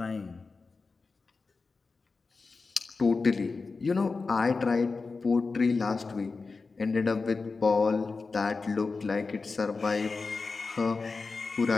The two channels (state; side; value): quieter; right; 4.2 dB